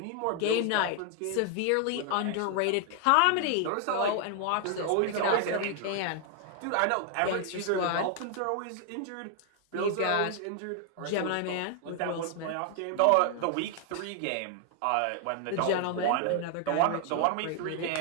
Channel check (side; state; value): both; different; correlation 0.00